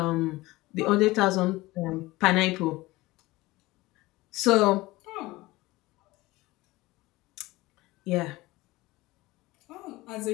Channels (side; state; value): right; quieter; 19.9 dB